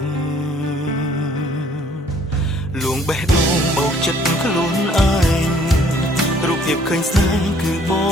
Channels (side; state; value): both; normal; correlation 0.60